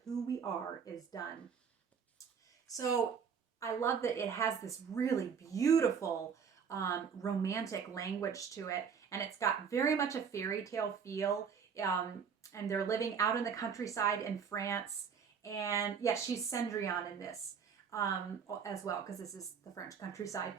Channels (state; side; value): quieter; left; 6.7 dB